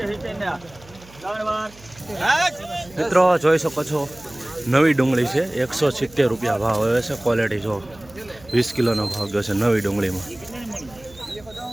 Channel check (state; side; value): noise; right; hum, 23 dB below the sound